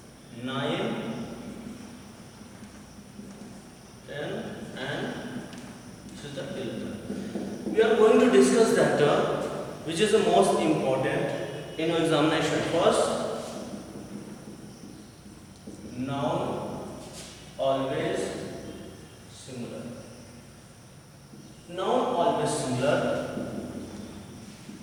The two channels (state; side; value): identical; both; correlation 1.00